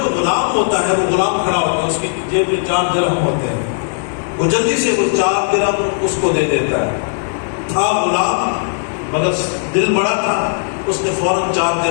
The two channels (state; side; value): silent; right; digital silence